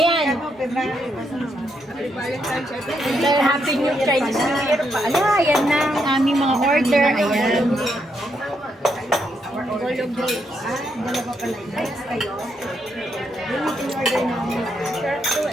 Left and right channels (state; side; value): normal; both; correlation 0.78